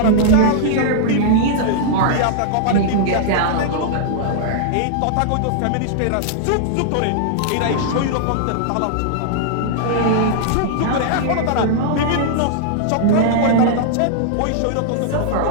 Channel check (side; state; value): both; different; correlation -0.01